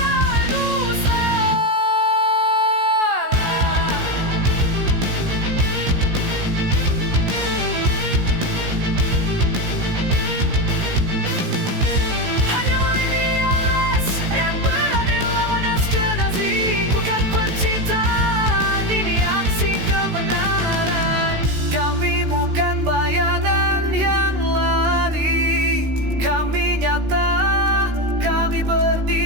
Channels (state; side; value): late; left; 16 ms